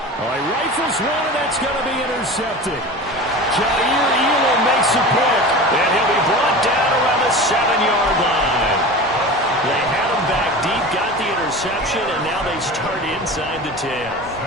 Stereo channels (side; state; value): both; normal; correlation 0.33